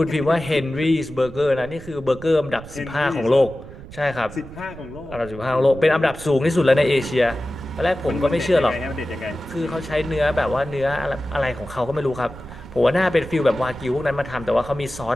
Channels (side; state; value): right; noise; rumble, 16 dB below the sound